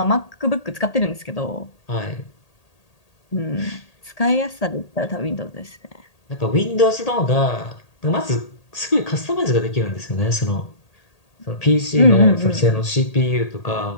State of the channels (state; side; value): late; right; 1.8 ms